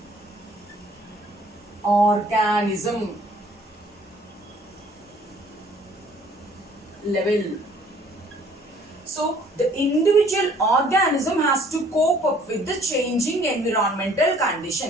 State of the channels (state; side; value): normal; both; correlation 0.57